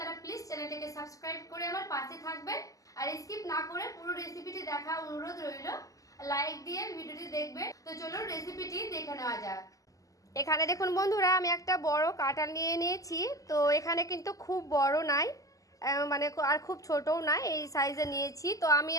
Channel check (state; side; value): late; right; 0.17 ms